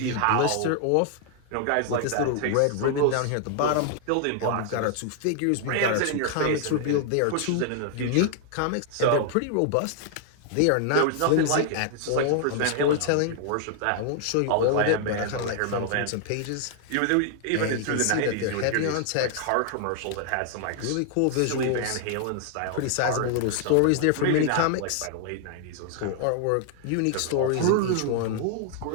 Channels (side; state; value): both; different; correlation 0.00